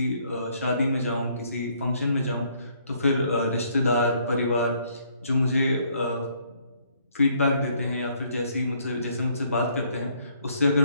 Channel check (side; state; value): both; inverted; correlation -0.67